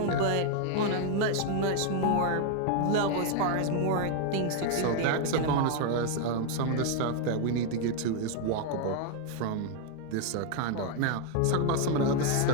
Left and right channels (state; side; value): different; both; correlation 0.00